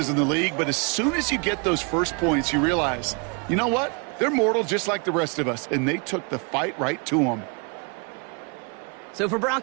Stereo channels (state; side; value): quieter; left; 34.3 dB